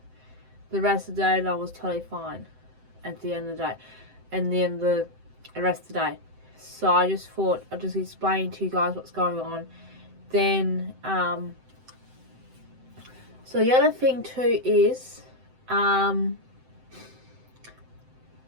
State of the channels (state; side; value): late; left; 7.8 ms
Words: rest of the day, I was totally fine at the end of the day, and then the rest of the day. So I just thought I'd just explain to you guys what's going on. Then, so the other thing too is,